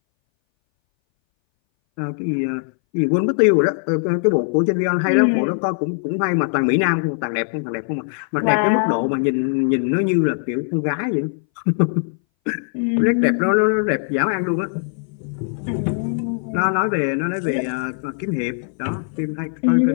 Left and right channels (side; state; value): right; silent; 61 dB below the other